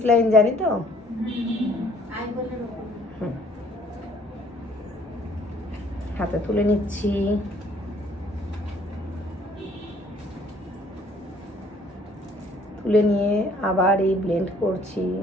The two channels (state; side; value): normal; both; correlation 0.59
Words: লাইন জানি তো। হাতে তুলে নিচ্ছি। তুলে নিয়ে আবার এই ব্লেন্ড করছি।